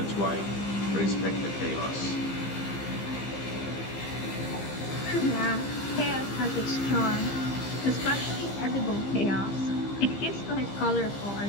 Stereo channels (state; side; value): late; right; 15 ms